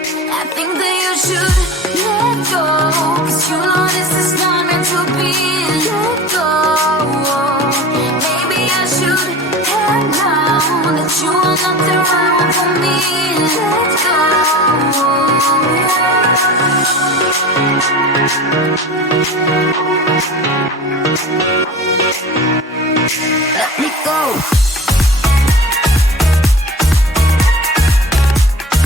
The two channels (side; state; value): both; normal; correlation 0.37